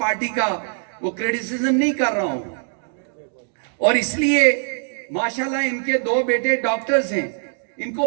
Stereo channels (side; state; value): left; silent; digital silence